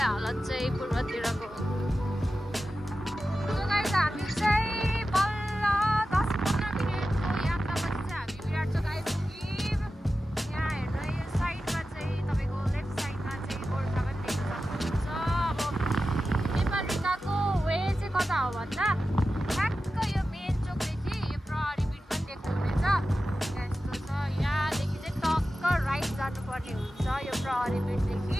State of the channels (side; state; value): both; normal; correlation 0.93